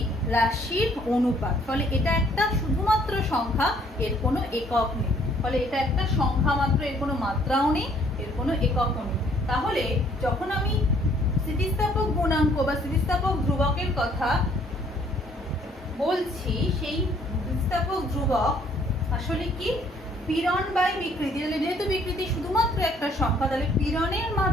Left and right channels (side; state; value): both; normal; correlation 0.62